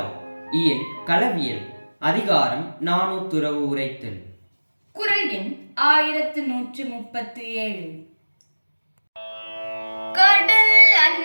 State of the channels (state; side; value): inverted; both; correlation -1.00